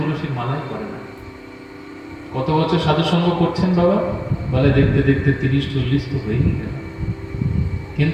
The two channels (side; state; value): both; identical; correlation 1.00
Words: মালাই করে না। কত বছর সাধু সঙ্গ করছেন বাবা? বলে দেখতে দেখতে 30-40 তো হয়েই গেল,